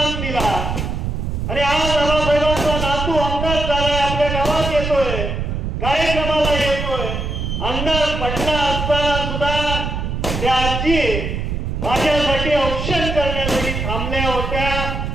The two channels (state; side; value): noise; right; rumble, 3 dB below the sound